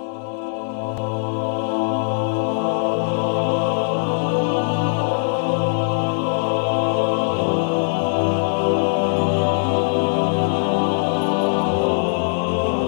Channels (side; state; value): right; silent; 65 dB below the other